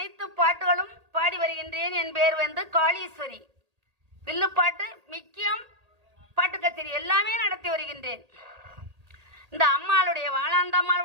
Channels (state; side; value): late; left; 1.8 ms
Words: பாட்டுகளும் பாடி வருகின்றேன். என் பேர் காளீஸ்வரி. வில்லுப்பாட்டு மிக்கியம் பாட்டு கச்சேரி எல்லாமே நடத்தி வருகின்றேன். இந்த அம்மாளுடைய